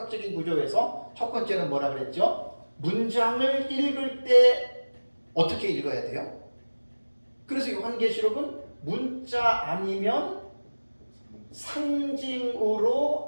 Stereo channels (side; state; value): both; inverted; correlation -1.00